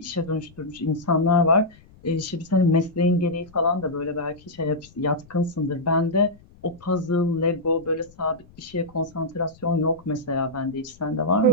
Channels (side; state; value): left; noise; rumble, 25 dB below the sound